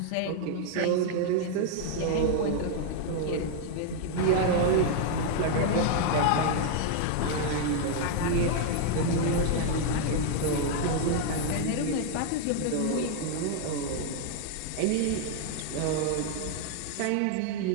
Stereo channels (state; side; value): different; both; correlation 0.00